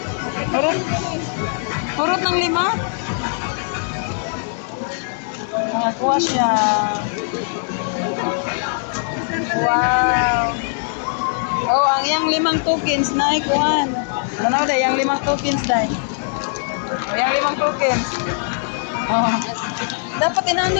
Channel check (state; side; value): silent; right; digital silence